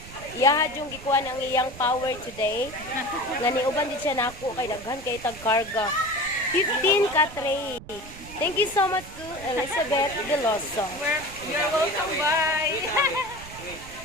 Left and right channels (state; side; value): noise; right; rumble, 16 dB below the sound